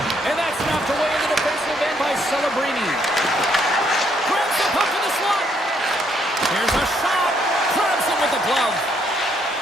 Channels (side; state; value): both; normal; correlation 0.71